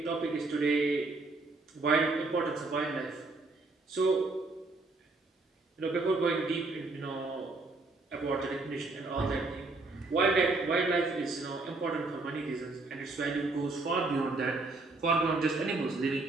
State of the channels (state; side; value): quieter; left; 3.4 dB